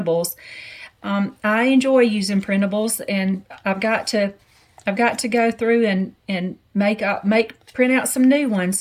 I enjoy using printables, and I've got to I've got to go through and print out some new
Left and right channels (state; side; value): identical; both; correlation 1.00